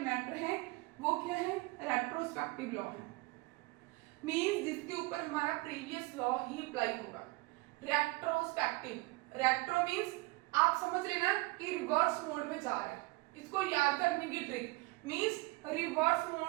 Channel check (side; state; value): left; quieter; 23.6 dB